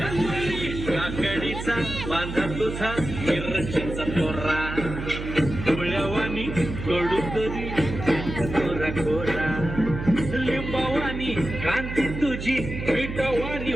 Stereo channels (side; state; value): right; noise; hum, 7 dB below the sound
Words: काकडीचा बांधा तुझा मिरचीचा तोरा डोळ्यावानी कडू तरी कोरा कोरा लिंबावानी क्रांती तुझी मिठवानी